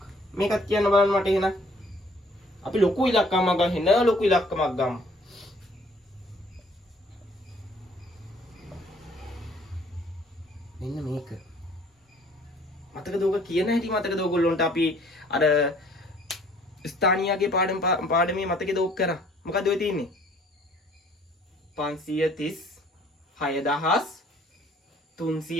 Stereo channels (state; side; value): normal; both; correlation 0.58